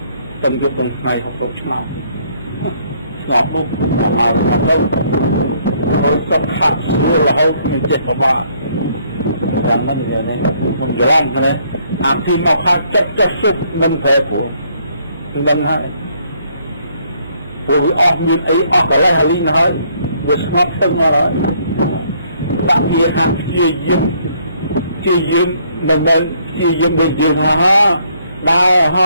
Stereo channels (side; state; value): both; inverted; correlation -0.67